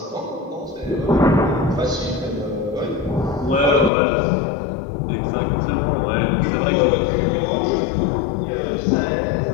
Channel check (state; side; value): drops out; right; at 3.9 s